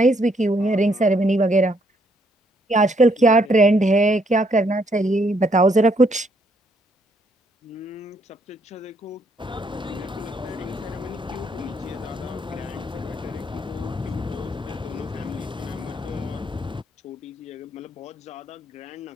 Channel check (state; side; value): normal; both; correlation 0.71